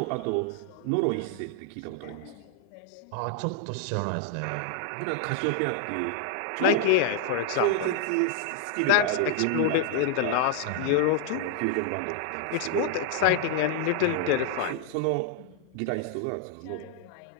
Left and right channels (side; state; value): both; different; correlation 0.00